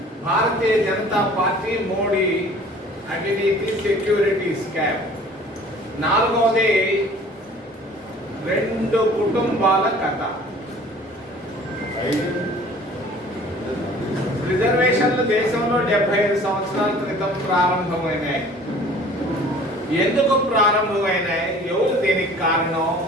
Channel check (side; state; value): both; normal; correlation 0.49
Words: భారతీయ జనతా పార్టీ మోడీ అవినీతి సెక్యూరిటీ స్కామ్, నాలుగవది 2 కుటుంబాల కథ. రిజర్వేషన్లు దేశంలో 75 సంవత్సరాల క్రితం ప్రారంభమైనాయి. ఎందుకు ప్రారంభమైనాయి? ఎవరు దీనికి కారణం?